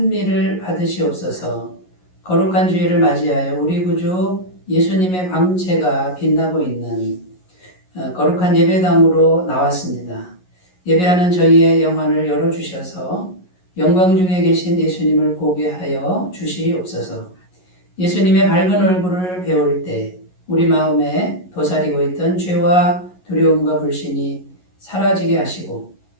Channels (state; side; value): late; right; 11 ms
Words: 받으시옵소서. 거룩한 주일을 맞이하여 우리 구주 예수님의 광채가 빛나고 있는 거룩한 예배당으로 나왔습니다. 예배하는 저희의 영안을 열어주셔서 영광 중에 계신 예수님을 보게 하여 주시옵소서. 예수님의 밝은 얼굴을 배울 때 우리 마음에 도사리고 있던 죄와 두려움과 불신이 사라지게 하시고